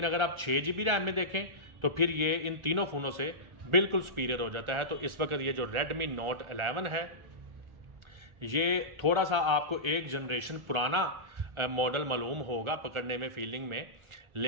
अगर आप 6 GB रैम में देखें तो फिर ये इन तीनों फ़ोनों से बिल्कुल सुपीरियर हो जाता है। तो इस वक्त ये जो Redmi Note 11 है, ये थोड़ा सा आपको एक जनरेशन पुराना मॉडल मालूम होगा पकड़ने में, फीलिंग में,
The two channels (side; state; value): left; late; 1.4 ms